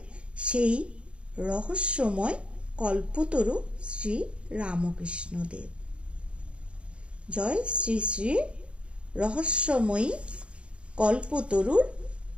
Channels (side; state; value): left; late; 0.058 ms